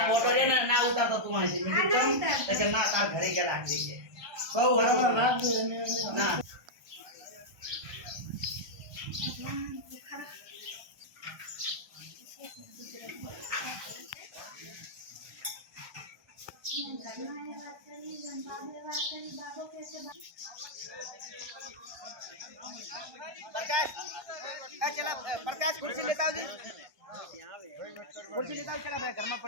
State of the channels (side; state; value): left; late; 1.2 ms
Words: प्रकाश कुर्सी लेता हो जी कुर्सी लेता हो चला भाई घर में